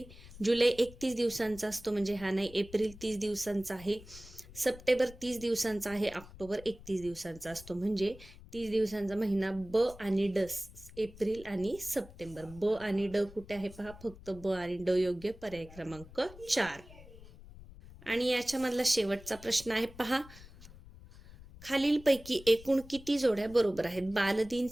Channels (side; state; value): left; noise; rumble, 18 dB below the sound